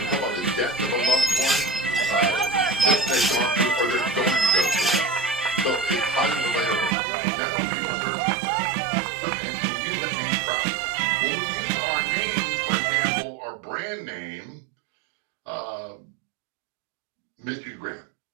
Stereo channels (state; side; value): drops out; left; at 7.0 s